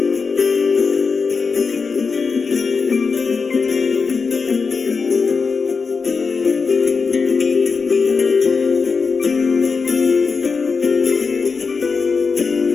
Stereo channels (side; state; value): right; quieter; 5.0 dB